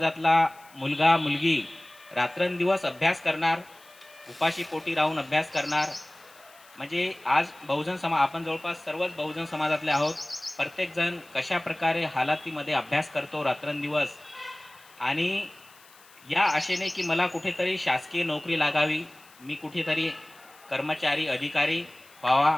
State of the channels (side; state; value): left; noise; hiss, 25 dB below the sound